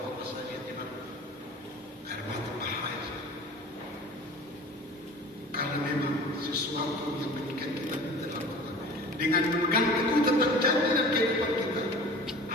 saya lihat di mana air mata bahaya. Karena memang sesuatu yang mengikat kita dalam Tuhan. Dengan memegang teguh tentang janji dan kehidupan kita,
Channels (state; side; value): normal; both; correlation 0.41